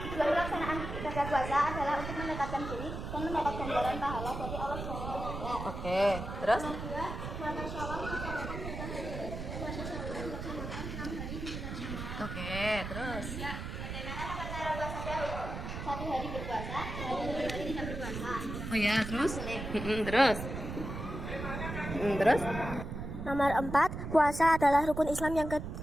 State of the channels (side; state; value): right; noise; rumble, 6 dB below the sound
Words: pelaksanaan ibadah puasa adalah untuk mendekatkan diri dan mendapat ganjaran pahala dari Allah SWT. Oke. Terus? Kedua, puasa Syawal melaksanakan puasa Syawal dilaksanakan 6 hari di bulan Syawal. Oke. Terus? Bagaimana cara puasa Daud? 1 hari berpuasa, 2 hari tidak berpuasa. Oh ya. Terus? Terus? Terus? Nomor 4, puasa adalah rukun Islam yang